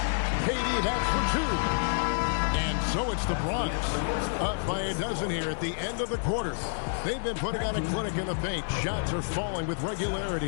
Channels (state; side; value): silent; right; digital silence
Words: KD, that's for 2. And so it's the Bronx, up by a dozen here at the end of the quarter. They've been putting on a clinic in the paint. Shots are falling with